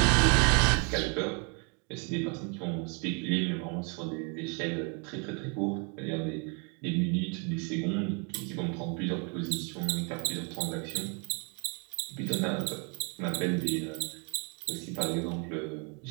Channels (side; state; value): left; quieter; 35.1 dB